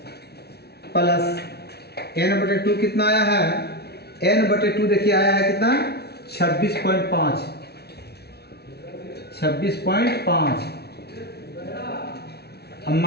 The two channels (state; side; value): late; right; 0.47 ms